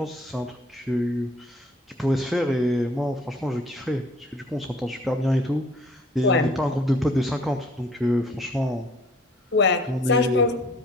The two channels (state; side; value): normal; both; correlation 0.55